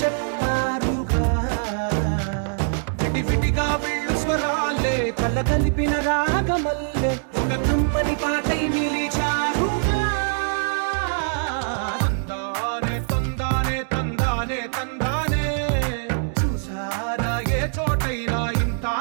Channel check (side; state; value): left; silent; digital silence